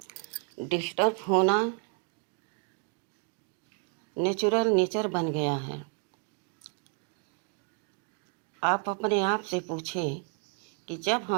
डिस्टर्ब होना नेचुरल नेचर बन गया है। आप अपने आप से पूछें कि जब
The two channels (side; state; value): left; quieter; 36.9 dB